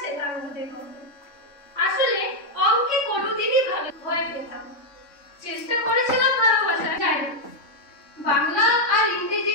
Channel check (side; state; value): right; late; 3.6 ms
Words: মতো। আসলে অঙ্কে কোনোদিনই ভালো ভয় পেতাম। চেষ্টা করেছিলাম ভালোবাসা, যাই বাংলা আর ইংরেজি